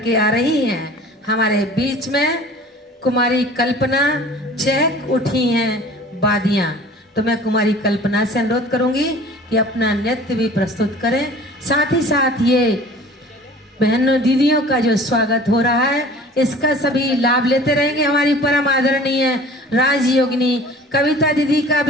आ रही हैं हमारे बीच में कुमारी कल्पना। चहक उठी हैं बादियां। तो मैं कुमारी कल्पना से अनुरोध करूंगी कि अपना नृत्य भी प्रस्तुत करें। साथ ही साथ ये बहनों दीदियों का जो स्वागत हो रहा है, इसका सभी लाभ लेते रहेंगे। हमारी परम आदरणीय राजयोगिनी कविता दीदी का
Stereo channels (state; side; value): normal; both; correlation 0.45